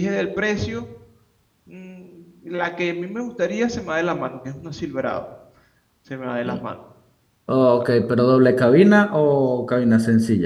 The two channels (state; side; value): identical; both; correlation 1.00